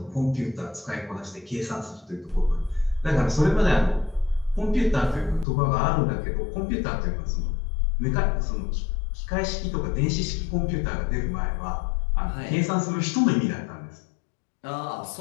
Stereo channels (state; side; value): drops out; right; at 5.5 s